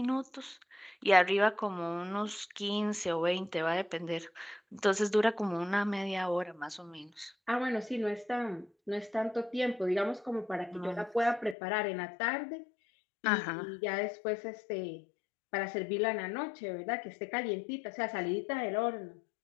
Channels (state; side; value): drops out; right; at 11.6 s